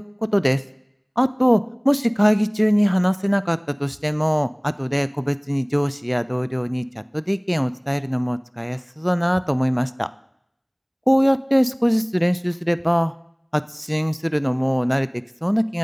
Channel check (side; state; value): both; identical; correlation 1.00